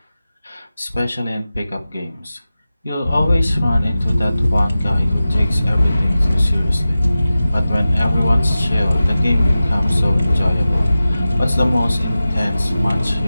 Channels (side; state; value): both; inverted; correlation -0.95